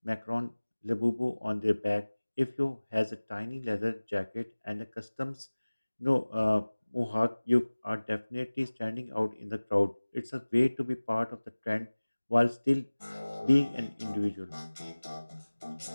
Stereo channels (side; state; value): both; inverted; correlation -1.00